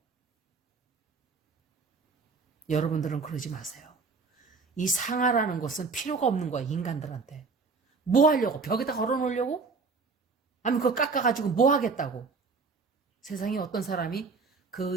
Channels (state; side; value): quieter; left; 4.5 dB